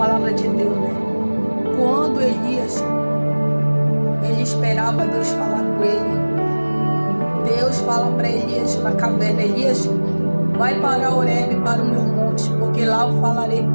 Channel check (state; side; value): inverted; both; correlation -1.00